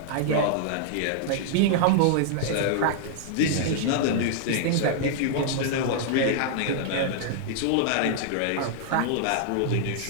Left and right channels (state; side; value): different; both; correlation -0.01